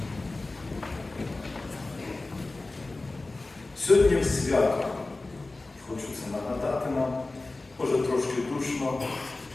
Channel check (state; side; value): quieter; right; 3.2 dB